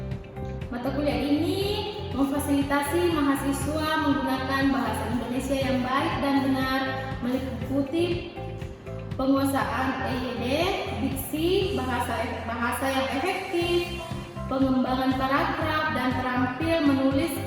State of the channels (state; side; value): identical; both; correlation 1.00